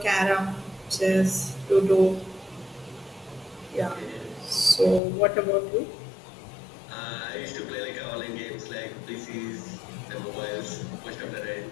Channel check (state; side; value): drops out; right; at 5.0 s